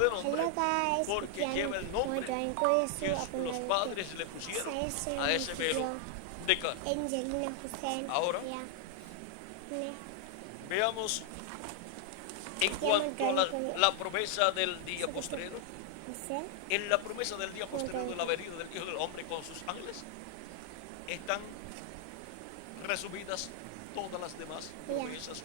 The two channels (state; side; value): different; both; correlation 0.00